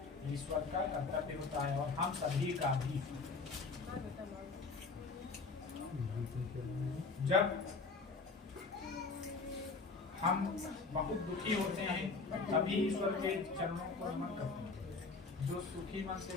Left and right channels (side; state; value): right; quieter; 4.2 dB